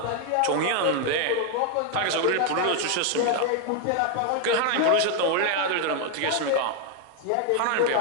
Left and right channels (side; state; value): both; different; correlation 0.01